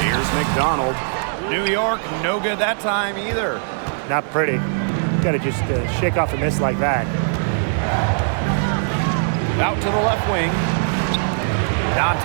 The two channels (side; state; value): left; silent; digital silence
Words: Here's McDonald. New York, no good that time either. Not pretty. Got to just shake off a miss like that. Out to the left wing.